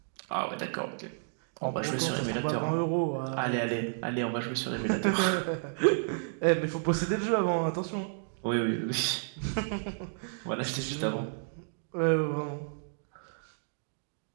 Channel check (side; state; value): left; silent; digital silence